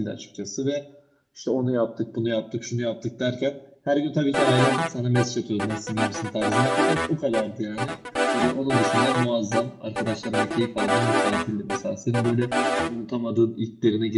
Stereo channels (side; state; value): both; identical; correlation 1.00